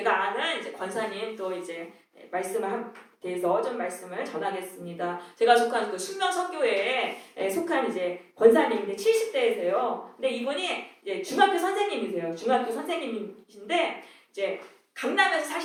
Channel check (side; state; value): both; identical; correlation 1.00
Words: 아는 이제 권사님 또 이제 말씀을 대해서 좀 말씀을 전하겠습니다. 제가 속한 그 숙명선교회에 속한 이제 권사님인데 70대이세요. 근데 이분이 이제 중학교 선생님이세요. 중학교 선생님이신데 이제 강남에서